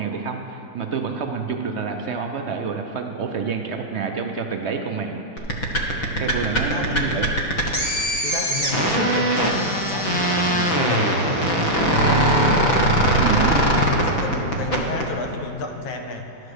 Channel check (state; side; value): late; right; 6.0 ms